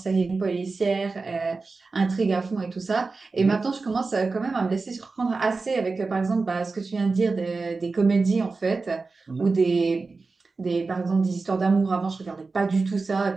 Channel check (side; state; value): left; quieter; 4.0 dB